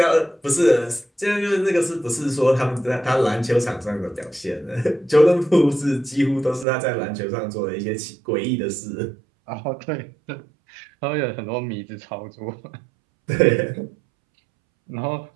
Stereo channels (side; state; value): left; drops out; at 6.7 s